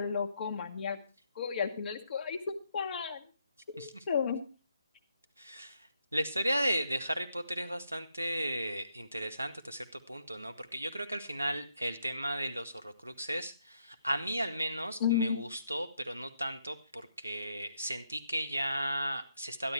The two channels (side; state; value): both; inverted; correlation -0.78